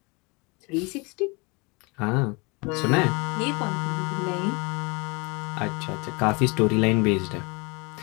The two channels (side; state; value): right; quieter; 28.9 dB